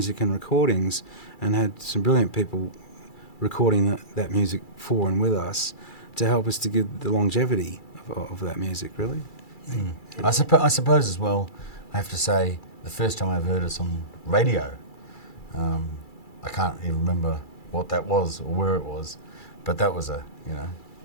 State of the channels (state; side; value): late; right; 2.3 ms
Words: and recordings, and had some brilliant people recording that music for and with us to help us to give the longevity of that music, really. Mm. I suppose as well, I have to say, the first time I've heard us on radio, I can't even remember what that was or where it was, but that was